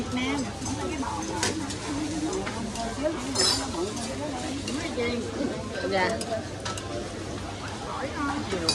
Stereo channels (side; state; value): both; identical; correlation 1.00